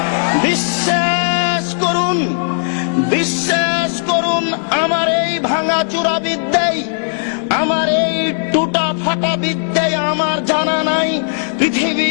বিশ্বাস করুন, বিশ্বাস করুন, আমার এই ভাঙাচুরা বিদ্যায়, আমার এই টুটা ফাটা বিদ্যায় আমার জানা নাই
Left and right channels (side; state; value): right; silent; digital silence